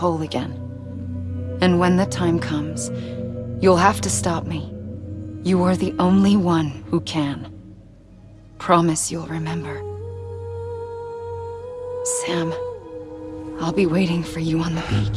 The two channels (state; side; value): identical; both; correlation 1.00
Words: again. And when the time comes, you'll have to stop me. You are the only one who can. Promise you'll remember. Sam, I'll be waiting for you on the